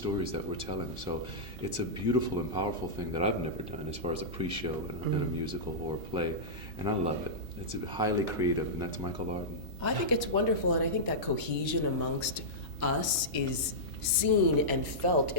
that we're telling. So it's a beautiful and powerful thing that I've never done as far as a pre-show in a musical or a play, and I love it. It's highly creative, and that's Michael Arden. I think it's wonderful, and I think that cohesion amongst us is seen and felt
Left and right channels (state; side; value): normal; both; correlation -0.12